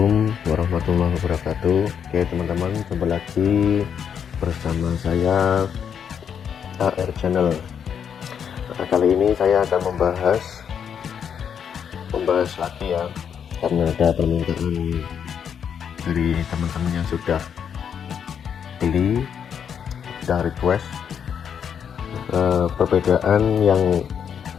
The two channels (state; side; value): quieter; right; 7.8 dB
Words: warahmatullahi wabarakatuh. Oke teman-teman, jumpa lagi bersama saya AR Channel. Nah, kali ini saya akan membahas lagi ya, karena ada permintaan dari teman-teman yang sudah beli, sudah request perbedaan yang